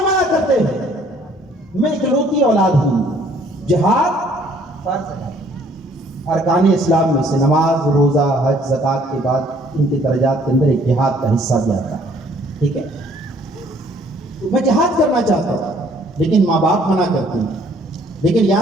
منع کرتے ہیں میں اکلوتی اولاد ہوں. جہاد فرض ہے ارکان اسلام میں سے نماز روزہ حج زکوٰۃ کے بعد ان کے درجات کے اندر ایک جہاد کا حصہ بھی آتا ہے. ٹھیک ہے میں جہاد کرنا چاہتا ہوں لیکن ماں باپ منع کرتے ہیں. لیکن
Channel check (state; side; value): normal; both; correlation 0.60